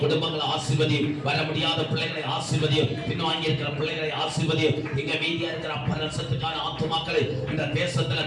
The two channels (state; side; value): identical; both; correlation 1.00